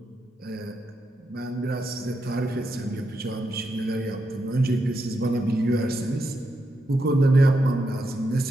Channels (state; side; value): normal; both; correlation 0.84